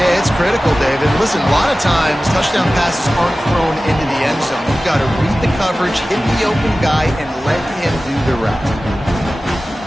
it's critical, David. Listen, a lot of times touchdown passes aren't thrown into the end zone. You've got to read the coverage, hit the open guy, and let him do the rest.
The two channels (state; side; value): normal; both; correlation 0.96